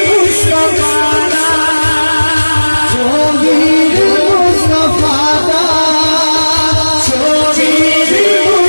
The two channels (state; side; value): inverted; both; correlation -1.00